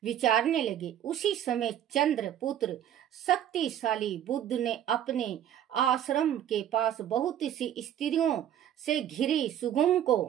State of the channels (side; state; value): left; quieter; 10.6 dB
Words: विचारने लगे। उसी समय चंद्रपुत्र शक्तिशाली बुद्ध ने अपने आश्रम के पास बहुत सी स्त्रियों से घिरी सुगुम